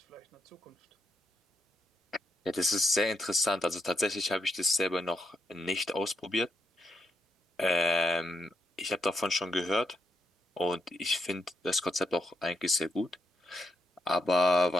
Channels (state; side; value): normal; both; correlation 0.79